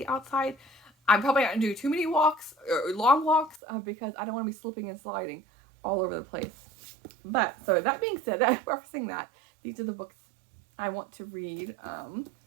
outside, I'm probably not going to do too many walks, or long walks, because I don't want to be slipping and sliding all over the place. But, so that being said, referencing that, these are the books I want to read.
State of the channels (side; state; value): left; drops out; at 3.6 s